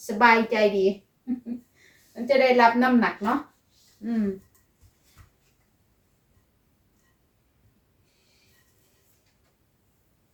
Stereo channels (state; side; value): identical; both; correlation 1.00